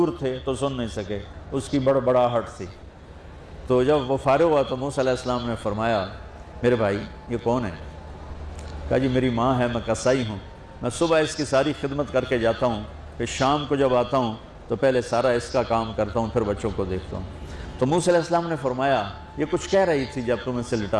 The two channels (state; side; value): identical; both; correlation 1.00